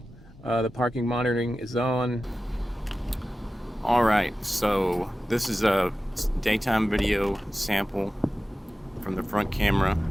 the parking monitoring is on. Alright, so this is a daytime video sample from the front camera.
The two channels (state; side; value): normal; both; correlation 0.95